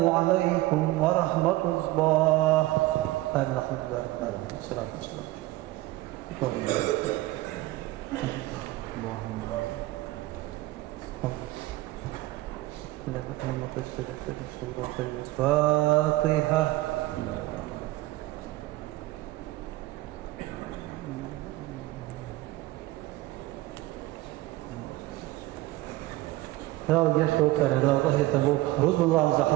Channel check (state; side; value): quieter; left; 18.1 dB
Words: عليكم ورحمة الله آمين الحمد لله رب العالمين والصلاة والسلام اللهم سورة الفاتحة لا وجيش توقع لا وطهي تبوك رد الله